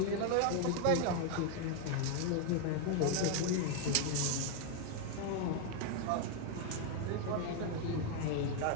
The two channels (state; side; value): different; both; correlation 0.01